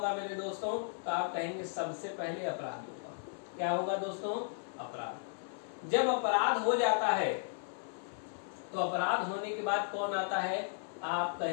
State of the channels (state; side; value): silent; right; 54 dB below the other